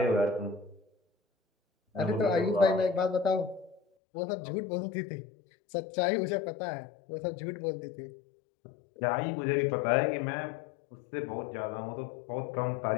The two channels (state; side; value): drops out; right; at 3.8 s